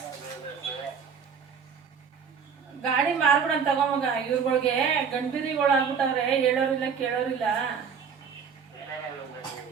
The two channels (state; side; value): quieter; left; 6.5 dB